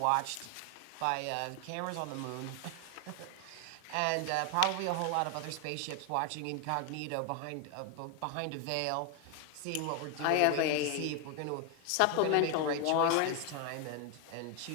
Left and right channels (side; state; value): both; different; correlation 0.01